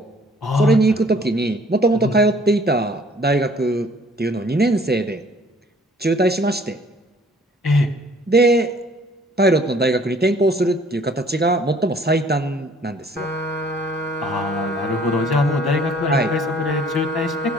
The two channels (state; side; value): normal; both; correlation 0.57